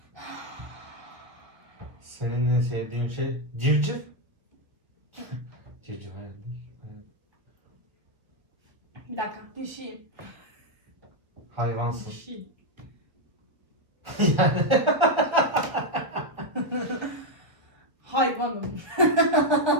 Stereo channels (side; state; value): left; late; 1.1 ms